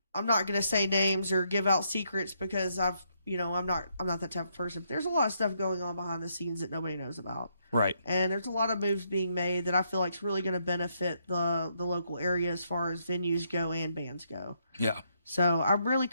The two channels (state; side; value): inverted; both; correlation -0.75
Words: going to say names or give out secrets because I'm not that type of person. But there's a lot of stuff going on behind the scenes that nobody knows about. Right. And there's a lot of moves being made that I feel like is really going to benefit the local area as far as venues go and bands go. Yeah. So I'm really